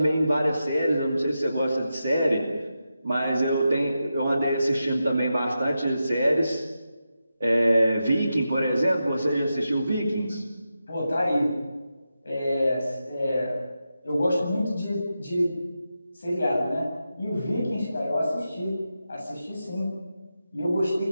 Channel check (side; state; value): both; inverted; correlation -0.89